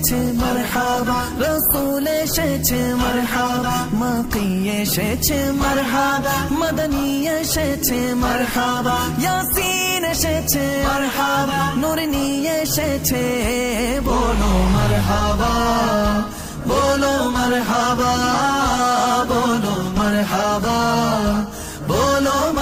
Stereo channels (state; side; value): identical; both; correlation 1.00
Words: এসেছে মারহাবা, রাসূল এসেছে মারহাবা, মাকি এসেছে মারহাবা, মদনী এসেছে মারহাবা, ইয়াসিন এসেছে মারহাবা, নূর নিয়ে এসেছে। বলো মারহাবা, বলো মারহাবা, বলো মারহাবা, বলো